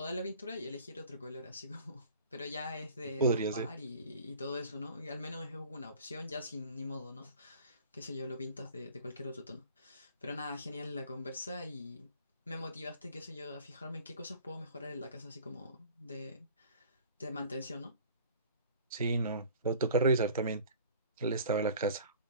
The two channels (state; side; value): inverted; both; correlation -0.46